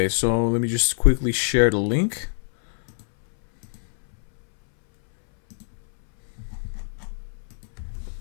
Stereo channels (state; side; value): silent; right; 63 dB below the other